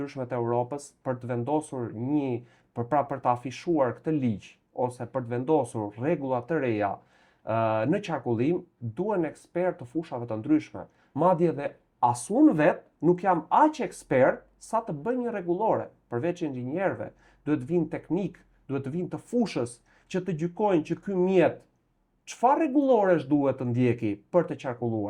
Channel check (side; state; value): both; identical; correlation 1.00